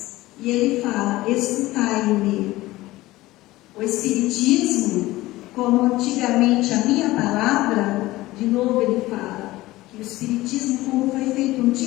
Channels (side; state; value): right; quieter; 18.0 dB